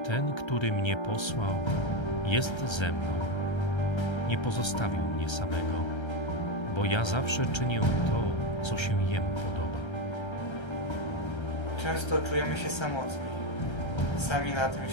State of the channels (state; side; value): late; right; 1.3 ms